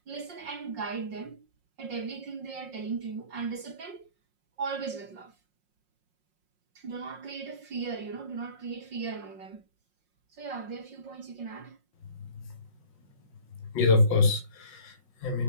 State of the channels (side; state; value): left; late; 5.5 ms